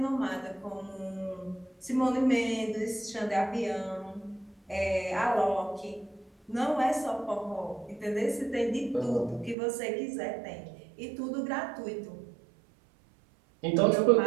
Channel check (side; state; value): left; drops out; at 9.6 s